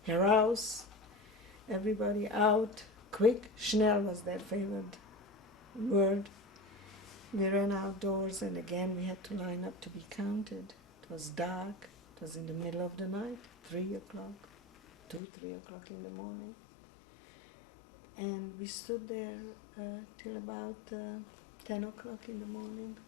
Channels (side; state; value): right; drops out; at 15.2 s